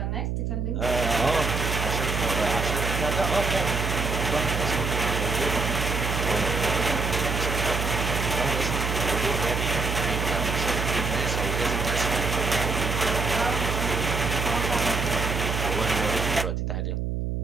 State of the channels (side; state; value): right; noise; hum, 1 dB below the sound